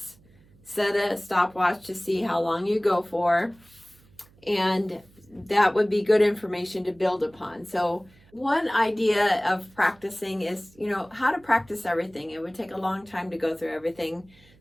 set a stopwatch to see how long you go for, and that would be good information to build upon. So one idea of practicing is, how to practice everything. It would take a long time to go through everything.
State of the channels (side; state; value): right; noise; hum, 28 dB below the sound